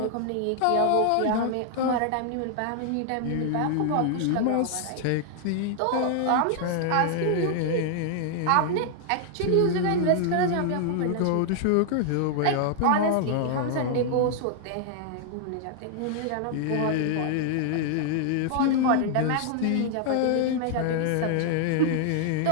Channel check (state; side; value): different; both; correlation 0.00